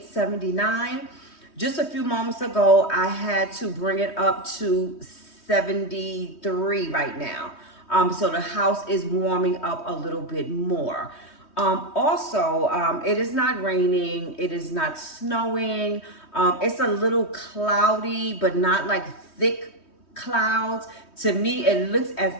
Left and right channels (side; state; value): right; late; 3.2 ms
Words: 79. Just a few moments ago, I had to bring it up to 73 right now. So the house is warming up a little bit more. It is not raining, it is not snowing. It's a little cloudy, but not like thick clouds. To me, it looks as